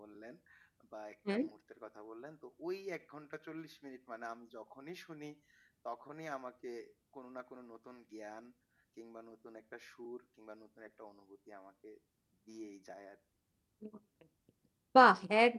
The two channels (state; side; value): identical; both; correlation 1.00